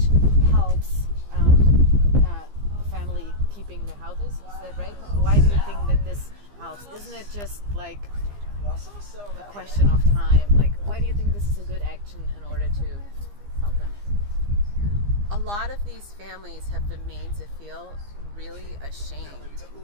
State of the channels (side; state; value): left; late; 15 ms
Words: helps family keeping their houses? Is that right? Why do you think that this helps? Isn't it just like a question of time? Like, why do you think this is a good action in order to help them? A lot of these families have been made to feel really ashamed